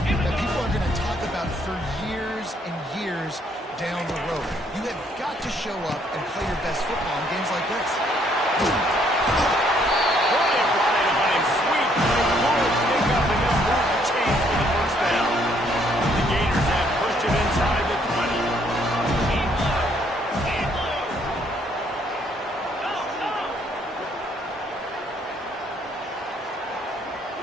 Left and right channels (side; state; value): both; normal; correlation 0.67